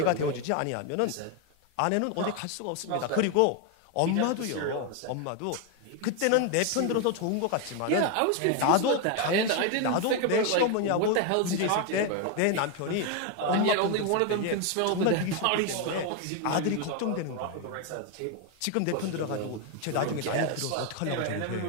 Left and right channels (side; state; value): both; different; correlation 0.01